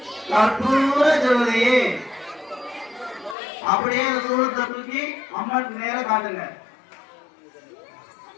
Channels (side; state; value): right; drops out; at 3.4 s